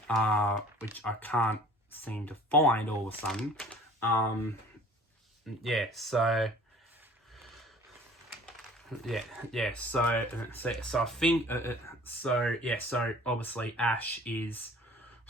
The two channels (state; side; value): normal; both; correlation 0.49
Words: which I can't seem to find all of a sudden. yeah, so so I think so obviously Ash is